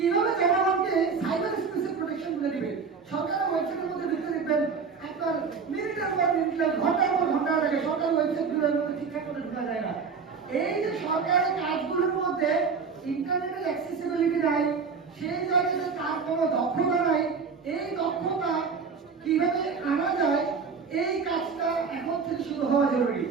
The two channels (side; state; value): left; quieter; 5.5 dB